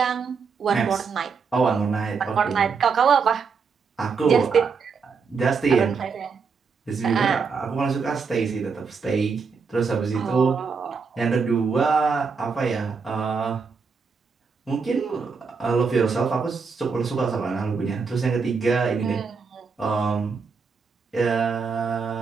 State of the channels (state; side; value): quieter; left; 5.3 dB